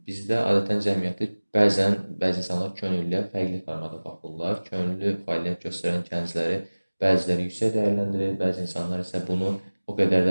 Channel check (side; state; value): both; inverted; correlation -1.00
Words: bizdə adətən cəmiyyəti bəzi insanlar könüllüyə fərqli formada baxırlar. Könüllü fəaliyyət göstərən gəncləri bəziləri yüksək dəyərləndirir, bəzi insanlar isə bunu o qədər